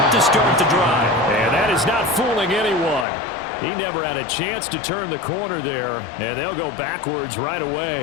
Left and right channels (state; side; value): drops out; right; at 3.1 s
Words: to start the drive. And that is not fooling anyone. He never had a chance to turn the corner there, and they'll go backwards right